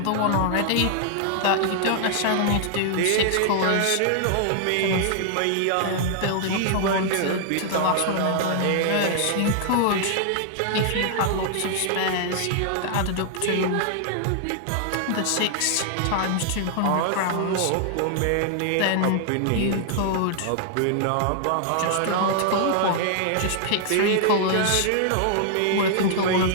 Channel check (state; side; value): different; both; correlation 0.00